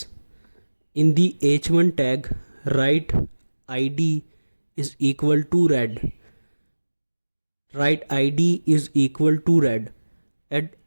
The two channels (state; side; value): inverted; both; correlation -1.00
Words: In the h1 tag, write ID is equal to red. Write ID is equal to red. And